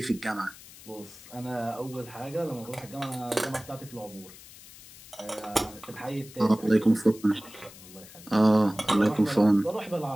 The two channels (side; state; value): left; noise; hiss, 19 dB below the sound